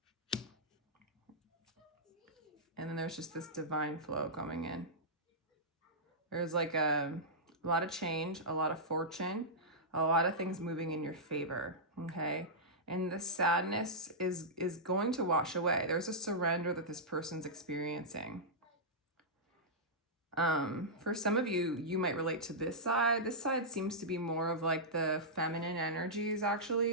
And then there's just this divine flow coming in. There's like a lot of change, a lot of fortune, a lot of things moving in your favor, okay? And the sadness is going to wash away. There's a surrender that this person's experiencing. For some of you, you might relate to this side. This side seems to be more of like the feminine energies,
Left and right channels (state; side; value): normal; both; correlation -0.12